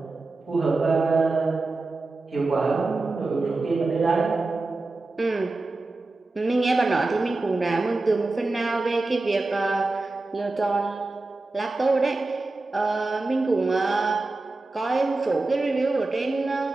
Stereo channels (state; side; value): quieter; left; 3.3 dB